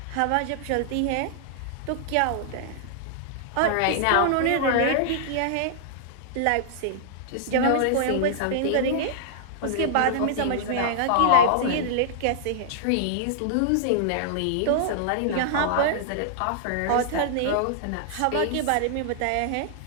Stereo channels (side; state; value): both; different; correlation -0.01